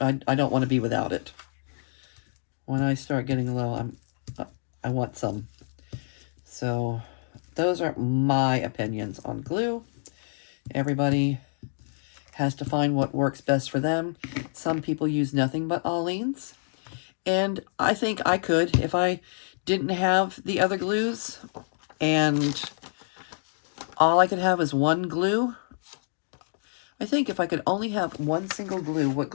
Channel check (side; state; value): right; silent; digital silence